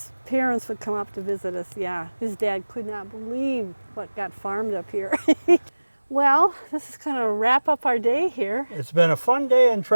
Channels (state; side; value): inverted; both; correlation -1.00